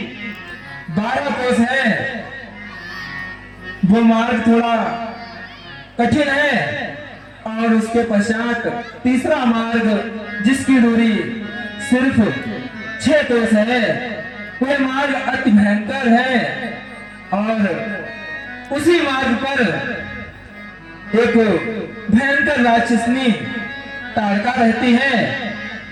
12 कोस है, वो मार्ग थोड़ा कठिन है। और उसके पश्चात तीसरा मार्ग जिसकी दूरी सिर्फ 6 कोस है, वह मार्ग अति भयंकर है। और उसी मार्ग पर एक भयंकर राक्षसनी ताड़का रहती है,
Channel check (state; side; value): identical; both; correlation 1.00